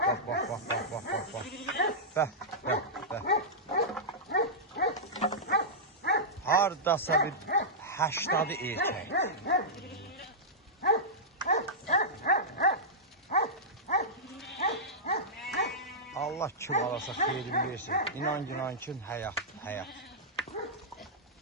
Bəh. Hardasa bir 80 erkək. Allah kim alasa xeyrin versin. İnan ki, həyat.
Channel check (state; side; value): normal; both; correlation -0.12